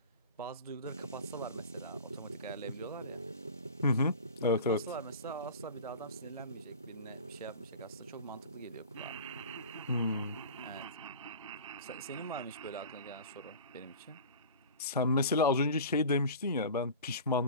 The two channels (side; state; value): both; inverted; correlation -0.36